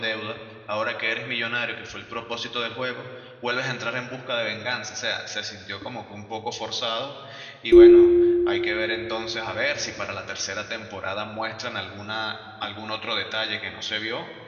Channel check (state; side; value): identical; both; correlation 1.00